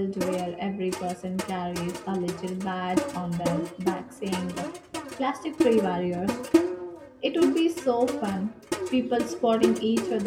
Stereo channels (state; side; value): identical; both; correlation 1.00